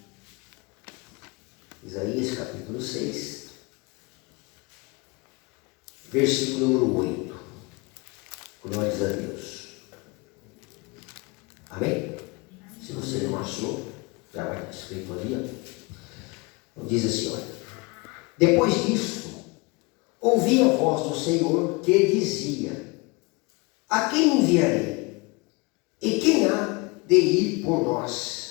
Isaías, capítulo 6, versículo número 8. Glórias a Deus. Amém? Se você não achou, já vai estar escrito ali, ó. Diz assim, olha. Depois disso, ouvi a voz do Senhor que dizia: a quem enviarei? E quem há de ir por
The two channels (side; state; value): right; quieter; 26.8 dB